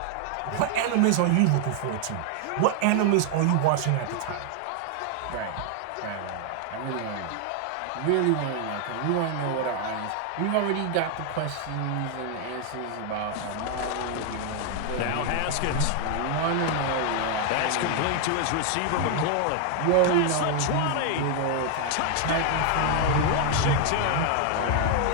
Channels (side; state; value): both; different; correlation 0.00